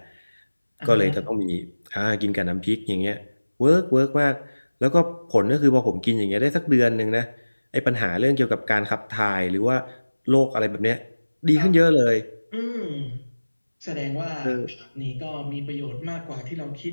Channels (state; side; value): inverted; both; correlation -1.00